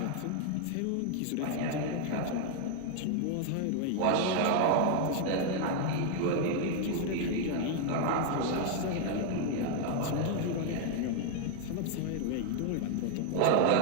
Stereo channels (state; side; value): different; both; correlation 0.00